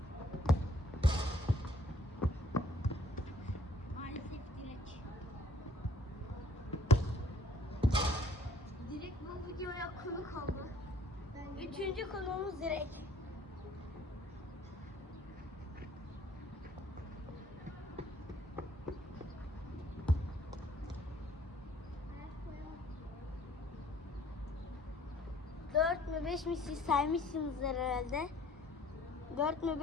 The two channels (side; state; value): both; normal; correlation 0.59